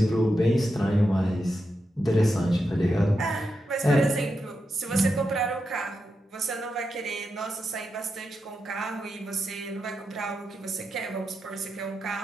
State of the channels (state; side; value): normal; both; correlation 0.87